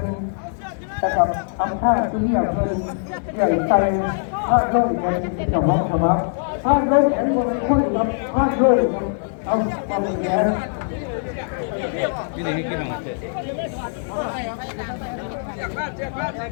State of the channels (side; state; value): right; silent; 58 dB below the other